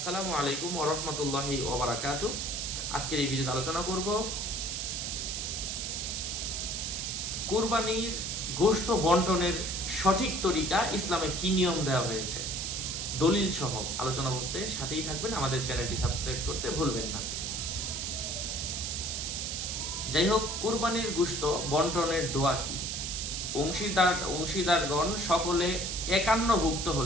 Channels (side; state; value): right; noise; hiss, 3 dB below the sound